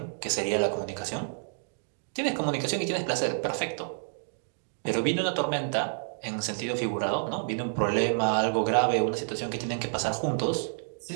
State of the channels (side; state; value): left; silent; digital silence